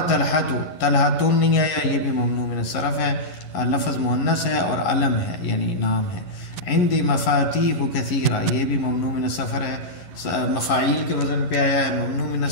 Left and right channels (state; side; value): late; right; 11 ms